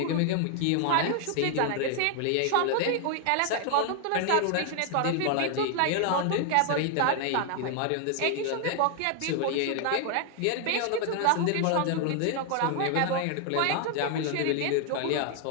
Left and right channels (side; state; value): both; different; correlation 0.00